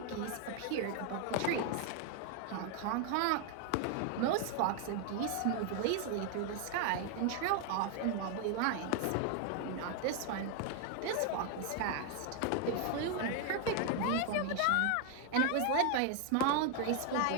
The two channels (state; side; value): different; both; correlation 0.01